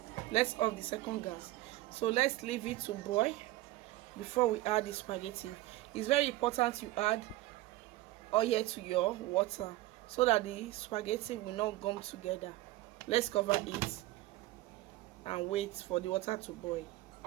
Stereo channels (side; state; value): left; quieter; 17.1 dB